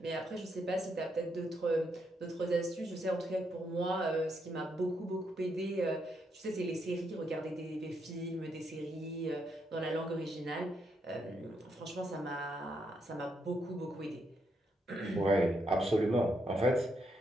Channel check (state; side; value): normal; both; correlation 0.78